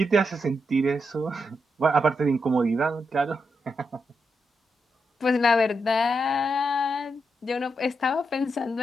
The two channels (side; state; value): both; normal; correlation 0.84